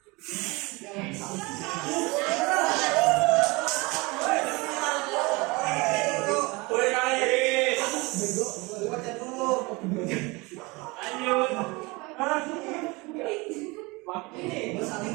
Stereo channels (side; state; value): left; quieter; 25.0 dB